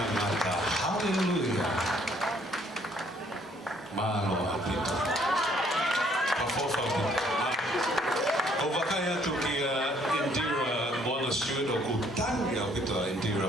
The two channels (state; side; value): normal; both; correlation 0.64